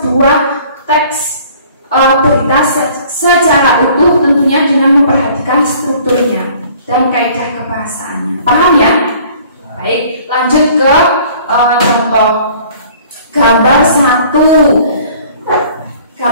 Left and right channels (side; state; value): both; inverted; correlation -0.53